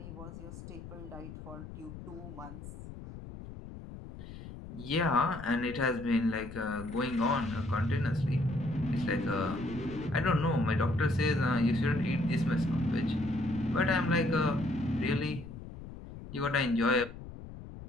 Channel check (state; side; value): noise; left; rumble, 13 dB below the sound